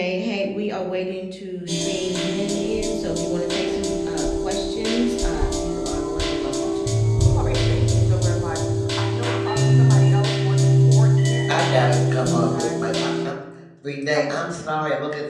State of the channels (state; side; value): identical; both; correlation 1.00